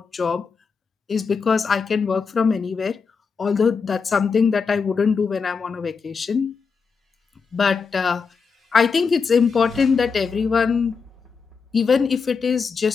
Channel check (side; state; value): right; quieter; 5.4 dB